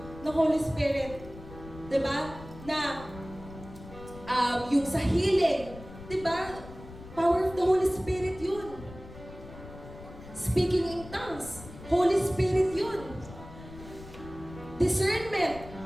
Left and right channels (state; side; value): noise; left; rumble, 15 dB below the sound